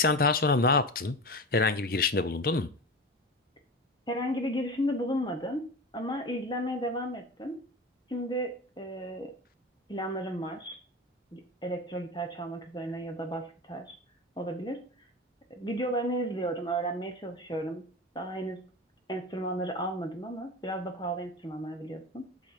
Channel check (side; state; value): both; normal; correlation 0.27